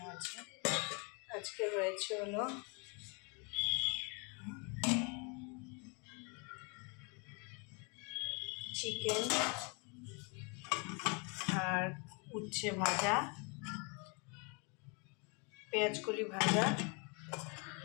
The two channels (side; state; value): right; quieter; 33.4 dB